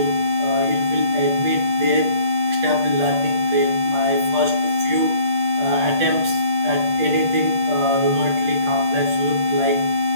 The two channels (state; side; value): late; left; 8.8 ms